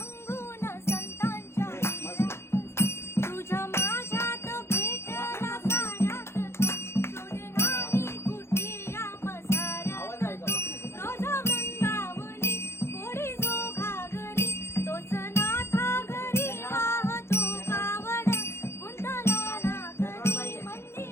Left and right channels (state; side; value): late; right; 0.12 ms